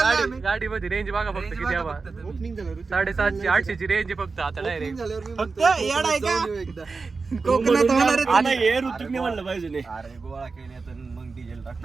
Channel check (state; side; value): quieter; left; 4.3 dB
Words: आम्ही. गाडीमध्ये रेंज बघा फक्त Range किती बघा हवा. फक्त तुम्ही. 750 800 रेंज फक्त आता डायरेक्ट. फक्त येड आहे का? कोकणात होणार आहे आता तुम्ही. हे ऋतिकने म्हणलं पाहिजे नाही. अरे गोळा केले तर मग डिझेल टाक.